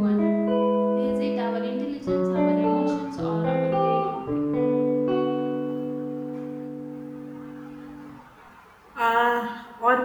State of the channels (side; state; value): both; identical; correlation 1.00